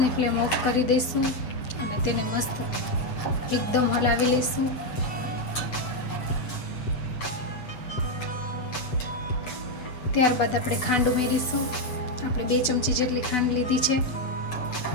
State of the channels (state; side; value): late; right; 7.7 ms